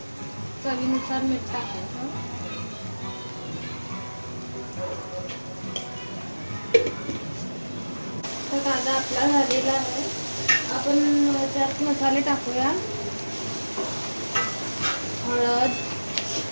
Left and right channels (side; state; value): both; inverted; correlation -1.00